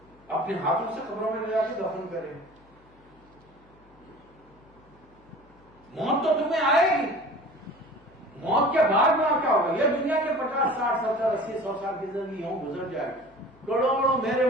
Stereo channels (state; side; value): noise; left; hum, 29 dB below the sound